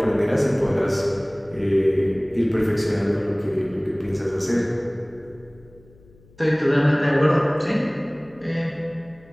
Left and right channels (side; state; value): left; noise; hum, 27 dB below the sound